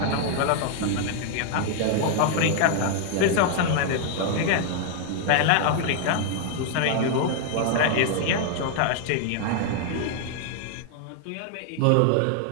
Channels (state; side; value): different; both; correlation 0.00